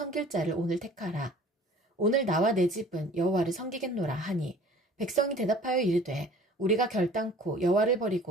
자를 오늘 택하라. 오늘 나와 내 집은 여호와를 섬기겠노라 하니 백성이 대답하여 이르되 우리가 결단코 여호와를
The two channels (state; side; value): normal; both; correlation 0.49